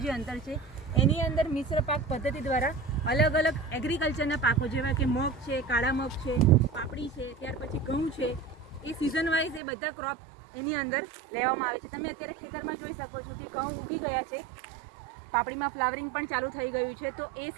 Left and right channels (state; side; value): drops out; left; at 9.6 s